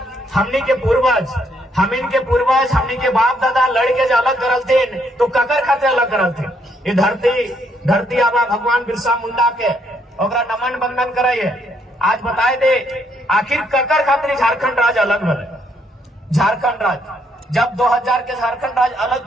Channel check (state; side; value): normal; both; correlation 0.71